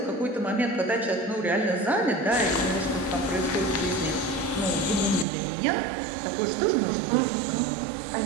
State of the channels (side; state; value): left; drops out; at 5.2 s